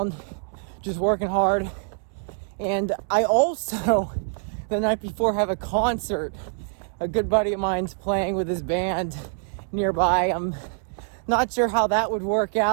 just working hard. And I also, the night before, have a concert. A good buddy of mine's playing with his band nearby. I'm not sure how that would work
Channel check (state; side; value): silent; left; 62 dB below the other